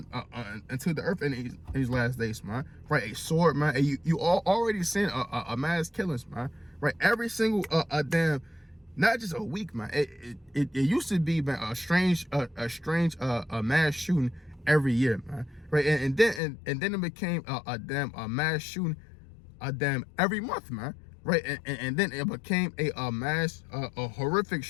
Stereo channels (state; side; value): drops out; right; at 16.4 s